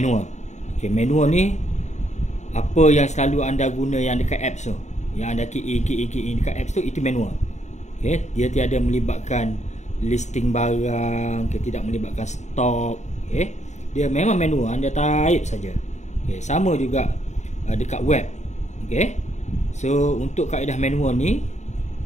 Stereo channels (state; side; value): late; right; 0.34 ms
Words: Okey, manual ni apa yang selalu anda guna yang dekat apps tu, yang anda key in dekat apps tu, itu manual. Okey, dia tiada melibatkan listing barang, tidak melibatkan stok. Okey, dia memang manual, anda type saja. Okey, sama juga dekat web. Okey, so untuk kaedah manual ni,